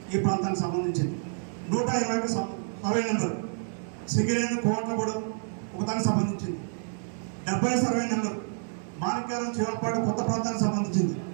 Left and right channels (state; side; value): silent; left; digital silence